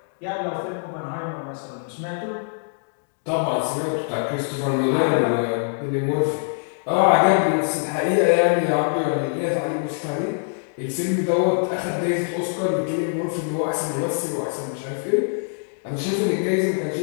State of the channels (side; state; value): right; silent; digital silence